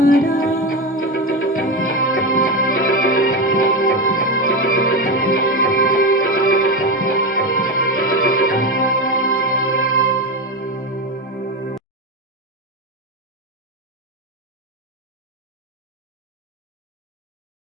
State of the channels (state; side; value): normal; both; correlation 0.16